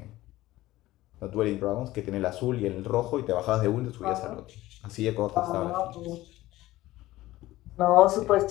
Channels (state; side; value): quieter; right; 16.8 dB